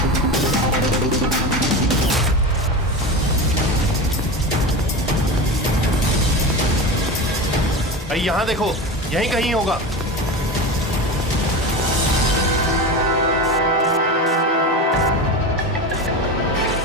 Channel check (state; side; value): normal; both; correlation 0.25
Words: भाई यहां देखो, यहीं कहीं होगा।